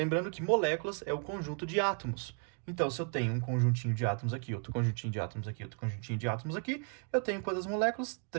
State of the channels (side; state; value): left; quieter; 38.4 dB